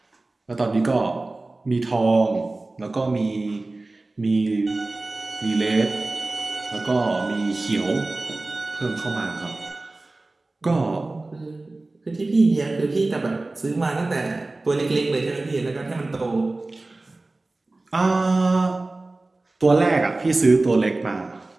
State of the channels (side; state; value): left; quieter; 3.1 dB